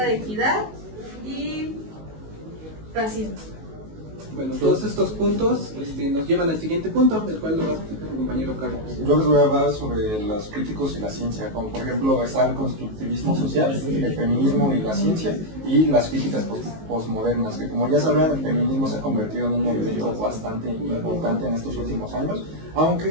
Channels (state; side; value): late; left; 19 ms